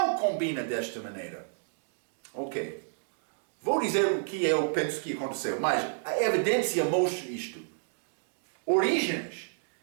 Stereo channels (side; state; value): left; silent; digital silence